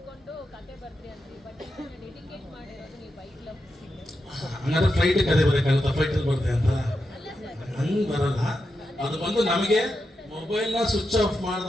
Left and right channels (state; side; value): normal; both; correlation 0.87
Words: ಹಂಗಾದ್ರೆ ಫ್ಲೈಟ್ ಕತೆ ಬರೋಕ್ಕಾಗುತ್ತಾ? ಫ್ಲೈಟಲ್ಲಿ ಬರುತ್ತೆ ಅಂತ ಹಂಗೆ ಬರಲ್ಲ. ಅದು ಬಂದು ನಮಗೆ ಮೊಬೈಲ್ನ ಸ್ವಿಚ್ ಆಫ್